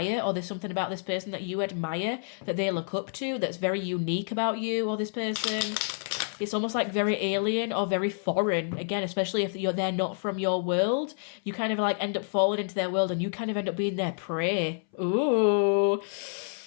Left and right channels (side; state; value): right; silent; 59 dB below the other